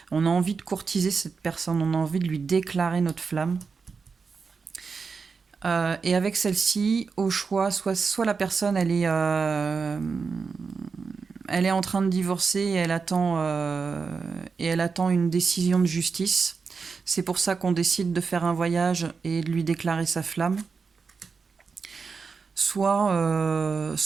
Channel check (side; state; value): left; quieter; 5.1 dB